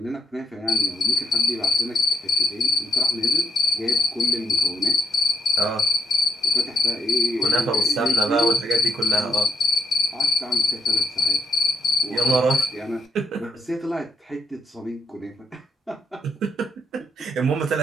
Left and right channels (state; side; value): normal; both; correlation 0.76